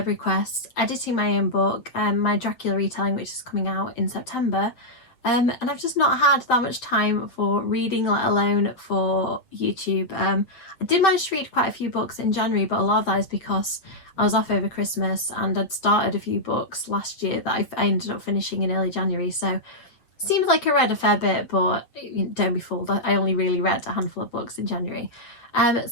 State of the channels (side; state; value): right; late; 8.1 ms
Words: requests, editing my own book, my Dracula retelling which is coming out in September, and I've just not had that much time for reading, let alone for YouTube. I did manage to read quite a few books in January, but a lot of that is because I was off over Christmas and I'd started a few books last year that I ended up finishing in early January, so seems like I read a fair bit, but don't be fooled, I only really read a handful of books in January.